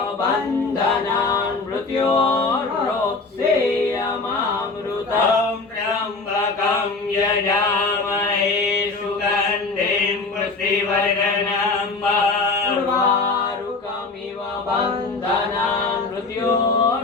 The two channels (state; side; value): quieter; right; 3.9 dB